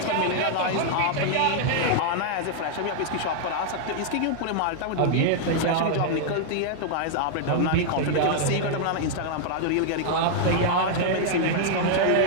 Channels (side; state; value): both; different; correlation -0.01